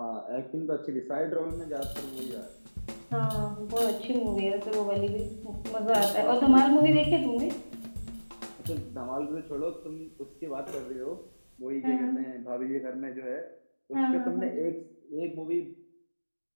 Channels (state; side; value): inverted; both; correlation -1.00